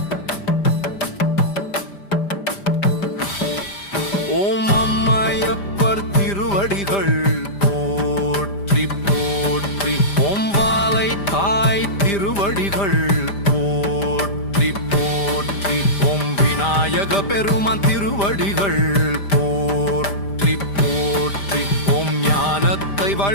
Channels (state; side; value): late; right; 5.0 ms